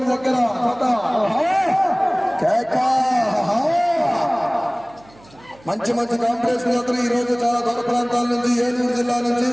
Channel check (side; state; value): right; noise; hum, 26 dB below the sound